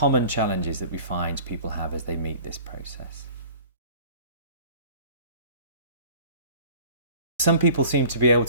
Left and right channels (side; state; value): both; inverted; correlation -0.45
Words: challenges that we find people have as they meet this process. Some people seem to be able